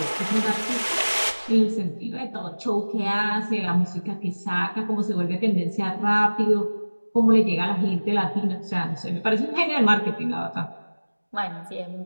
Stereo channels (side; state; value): both; inverted; correlation -1.00